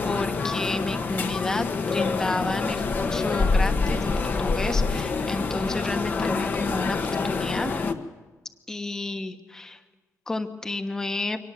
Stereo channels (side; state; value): right; quieter; 3.3 dB